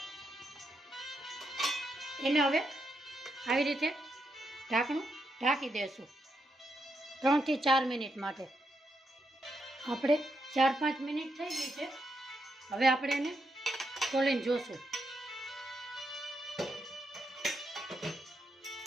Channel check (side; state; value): both; normal; correlation 0.81